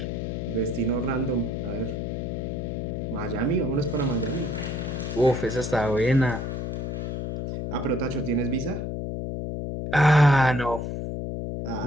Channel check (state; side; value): noise; left; hum, 3 dB below the sound